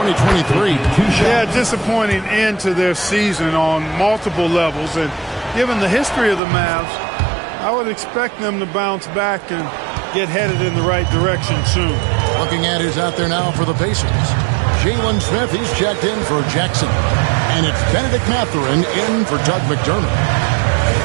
Yeah, disappointing end to their season on multiple levels. And given the history of the Mavs, I would expect them to bounce back and get headed in the right direction soon. Looking at who's out there now for the Pacers. Jalen Smith, he's checked in for Jackson. And it's Benedict Mathurin in for Doug McDermott.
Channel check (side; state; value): left; drops out; at 6.4 s